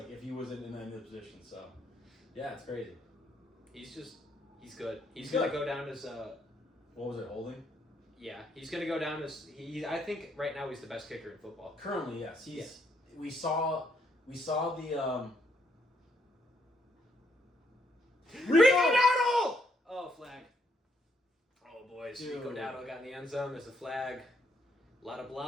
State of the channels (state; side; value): normal; both; correlation 0.73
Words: he wasn't in any position. So, yeah, it's crazy. He's good. He's going to go down as what was it, holding? Yeah, he's going to go down as I think right now he's the best kicker in football. Currently, yes. We saw the Rico Dowdle! Oh, flag. Oh, boys. Dude. Rico Dowdle got in the end zone. There's a flag. A lot of